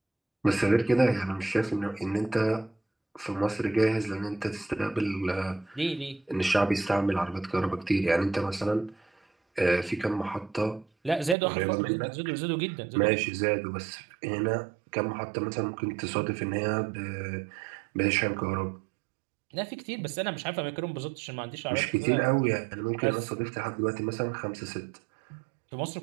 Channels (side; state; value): left; drops out; at 11.4 s